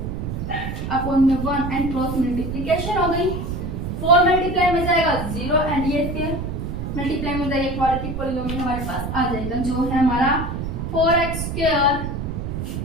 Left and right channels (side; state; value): right; noise; rumble, 4 dB below the sound